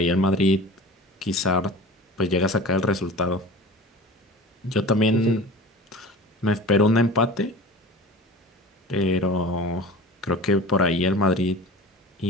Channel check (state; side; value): normal; both; correlation 0.38